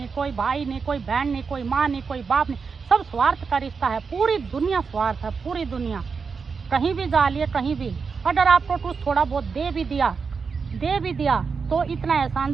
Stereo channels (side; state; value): left; quieter; 5.3 dB